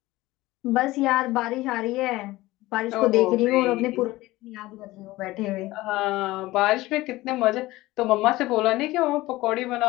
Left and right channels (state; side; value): quieter; right; 18.5 dB